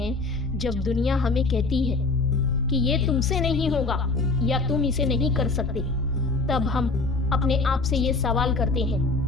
जब दुनिया हमें कहती है कि ये तुमसे नहीं होगा या तुम इसे नहीं कर सकते। तब हम अपने आप से ये सवाल करते हैं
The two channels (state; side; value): quieter; right; 3.6 dB